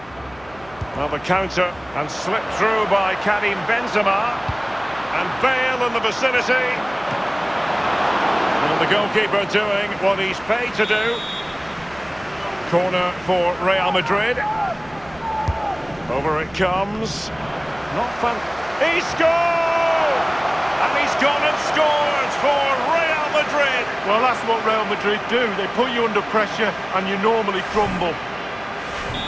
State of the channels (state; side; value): noise; right; hum, 24 dB below the sound